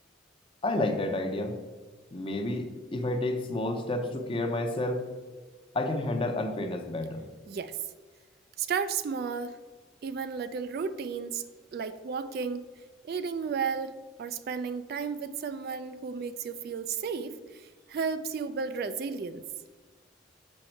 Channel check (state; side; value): normal; both; correlation 0.32